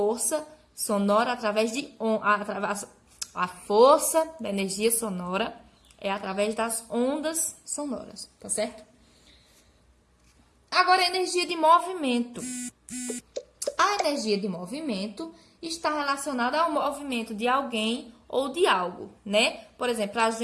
sonora através de a força da energia sonora é através das ondas sonoras, tá certo? Agora, a energia de movimento. A energia de movimento está relacionada ao movimento de alguém ou de algo, né? Por exemplo, para a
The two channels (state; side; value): identical; both; correlation 1.00